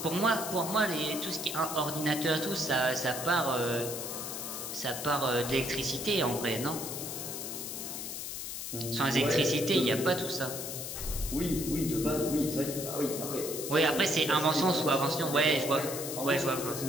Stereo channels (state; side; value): noise; left; hiss, 6 dB below the sound